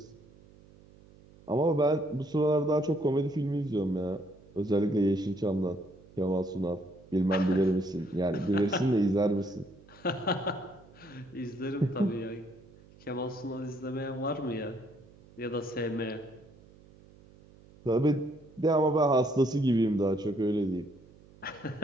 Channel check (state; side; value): noise; right; hum, 24 dB below the sound